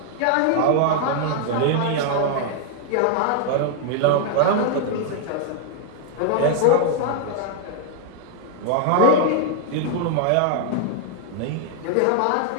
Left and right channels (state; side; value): different; both; correlation 0.00